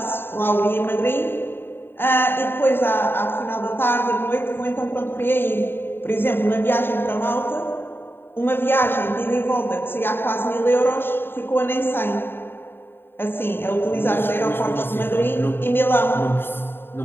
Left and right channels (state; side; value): late; right; 0.10 ms